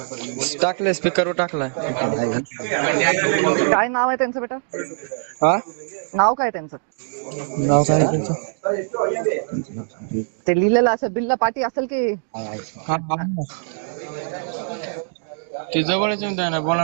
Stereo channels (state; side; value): silent; left; digital silence